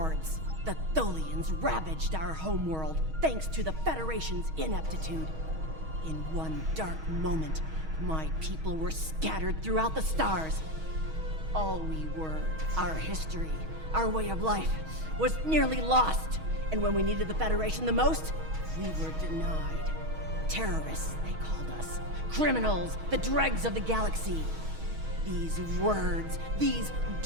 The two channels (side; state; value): left; late; 6.3 ms